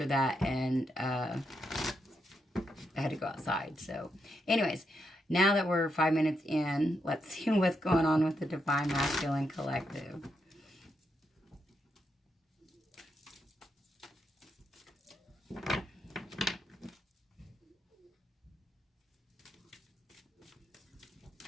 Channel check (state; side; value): normal; both; correlation 0.81